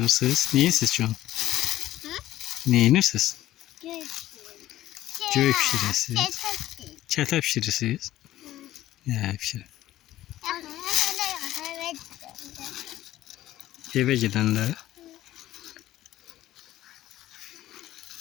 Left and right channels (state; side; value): quieter; right; 14.3 dB